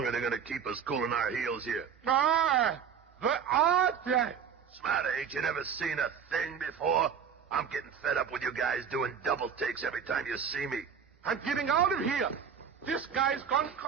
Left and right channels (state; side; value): quieter; left; 7.2 dB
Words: are they going to keep us cooling our heels here? Where are they? Smarter, ain't you never seen a thing before? I'm getting fed up with you guys doing double takes every time you see me. I'm getting out of here. This guy's gone